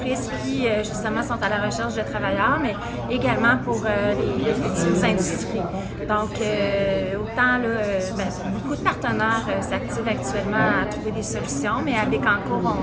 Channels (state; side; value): identical; both; correlation 1.00